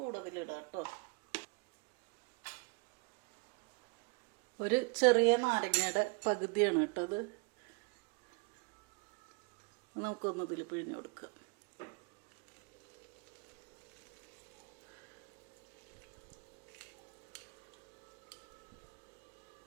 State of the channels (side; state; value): left; quieter; 30.7 dB